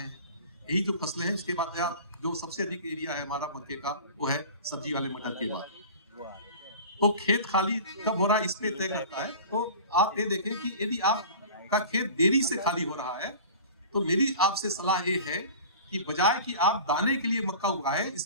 हैं। यही जो फसलें हैं उसके बाद या जो सबसे अधिक एरिया है हमारा मक्के का वो है सब्जी वाले मटर के बाद। तो खेत खाली कब हो रहा है इस पे तय करता है। तो आप ये देखें कि यदि आपका खेत देरी से खाली हो रहा है तो मेरी आपसे सलाह ये है कि बजाय कि आप दाने के लिए मक्का उगाएं,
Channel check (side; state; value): both; inverted; correlation -0.39